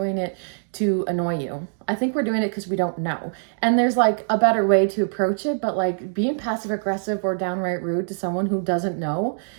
it to annoy you. I think we're doing it because we don't know. And there's like a better way to approach it. But like being passive aggressive or downright rude to someone who doesn't know,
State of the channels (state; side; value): silent; left; digital silence